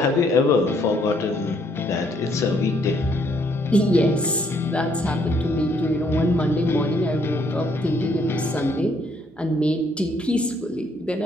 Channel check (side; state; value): both; normal; correlation 0.68